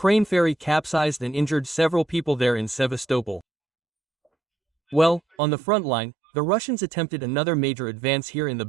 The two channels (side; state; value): left; drops out; at 5.2 s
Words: ferry capsized and injured several people there in Sevastopol. Well, on the front line, the Russians attempted another major advance here in the